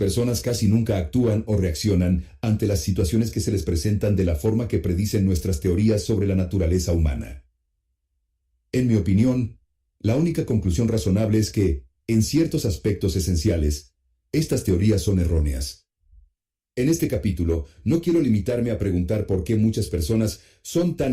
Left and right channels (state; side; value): identical; both; correlation 1.00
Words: casi nunca actúan o reaccionan ante las situaciones que se les presentan de la forma que predicen nuestras teorías sobre la naturaleza humana. En mi opinión, la única conclusión razonable es que, en ciertos aspectos esenciales, estas teorías son erróneas. En este capítulo, no quiero limitarme a preguntar por qué muchas personas son